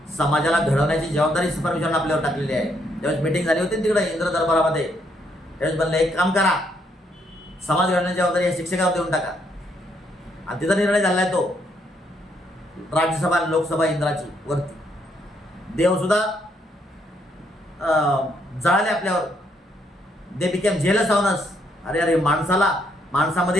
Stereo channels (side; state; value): both; normal; correlation 0.73